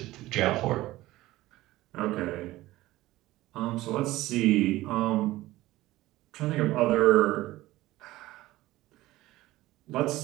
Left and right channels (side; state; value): left; quieter; 17.1 dB